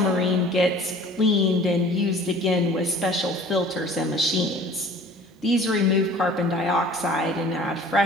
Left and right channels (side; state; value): both; normal; correlation 0.47